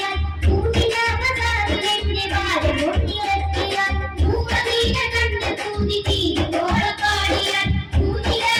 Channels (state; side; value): identical; both; correlation 1.00